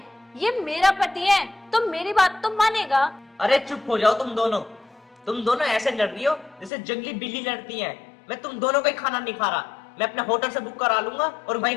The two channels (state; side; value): drops out; right; at 6.7 s